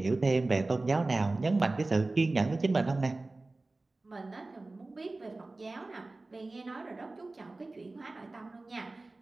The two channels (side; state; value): left; quieter; 3.2 dB